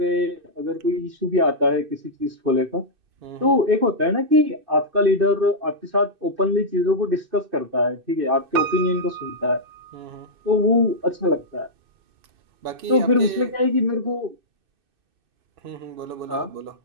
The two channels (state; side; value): late; left; 2.6 ms